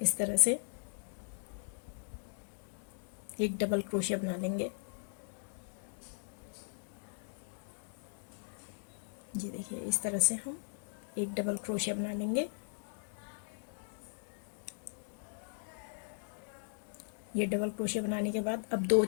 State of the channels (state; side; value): silent; right; digital silence